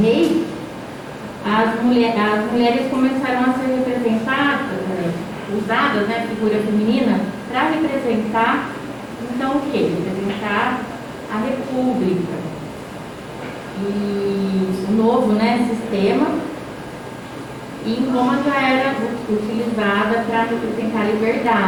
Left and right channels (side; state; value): both; identical; correlation 1.00